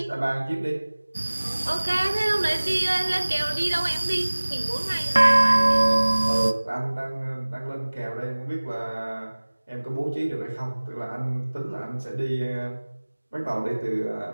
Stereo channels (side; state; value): both; inverted; correlation -1.00